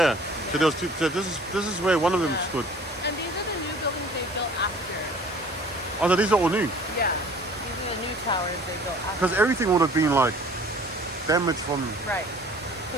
So there was two. So this is where one of them Yeah. stood. And these are the new buildings they built after. Oh, so these are all new. Yeah. These are the new towers they built after. Because everything would have been like damaged from Right.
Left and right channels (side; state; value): both; normal; correlation 0.49